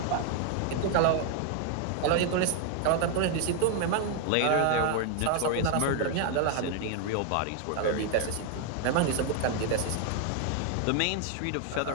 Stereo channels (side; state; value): both; different; correlation 0.00